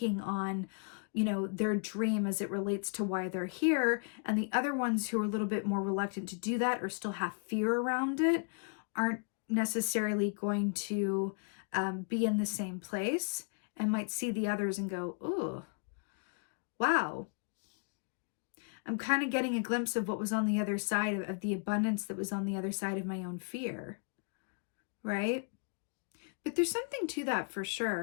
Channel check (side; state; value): right; quieter; 38.4 dB